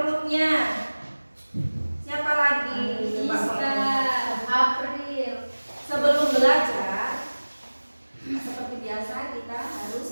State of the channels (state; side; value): inverted; both; correlation -1.00